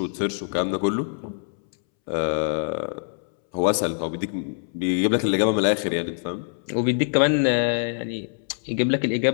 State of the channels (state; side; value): silent; right; 62 dB below the other